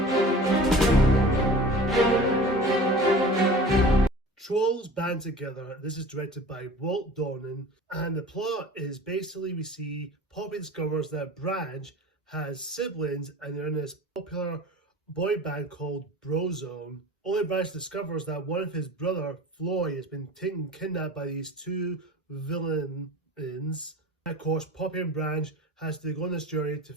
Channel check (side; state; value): both; normal; correlation 0.40